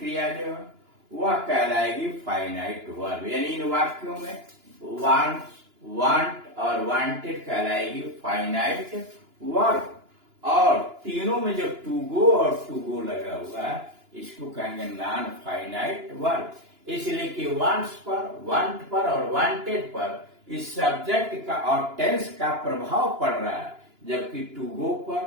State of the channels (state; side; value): late; left; 2.9 ms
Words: जो है वह कहलाएगी फाइनाइट वर्ब। यानी इन वाक्यों में वांट्स, वांट और वांटेड कहलाएगी फाइनाइट वर्ब, और तीनों में जो टू गो और टू गो लगा हुआ है इसको कहेंगे नॉन फाइनाइट वर्ब। इसलिए कि वांट्स पर, वांट पर और वांटेड पर इस सब्जेक्ट का और टेंस का प्रभाव पड़ रहा है, जबकि टू गो